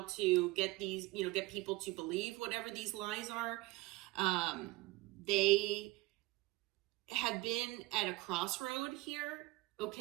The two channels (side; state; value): left; quieter; 20.3 dB